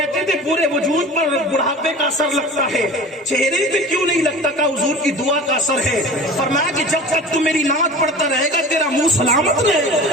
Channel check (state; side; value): normal; both; correlation 0.38